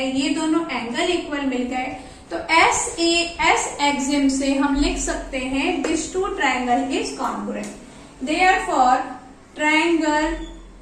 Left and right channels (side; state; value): both; identical; correlation 1.00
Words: ये दोनों एंगल इक्वल मिल गए, तो SAS एक्सिम से हम लिख सकते हैं this two triangle is congruent. Therefore triangle